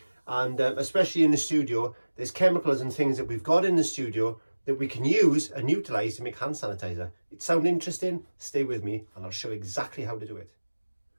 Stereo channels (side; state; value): both; inverted; correlation -1.00